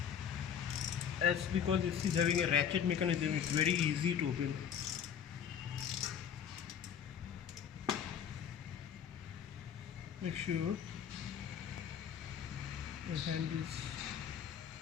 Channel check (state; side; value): quieter; right; 8.3 dB